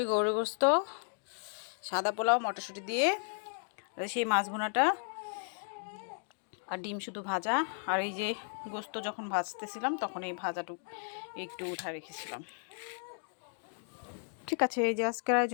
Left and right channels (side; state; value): right; silent; 55 dB below the other